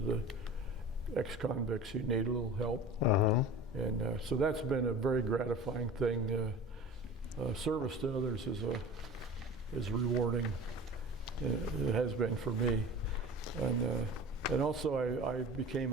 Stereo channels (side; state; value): both; normal; correlation 0.37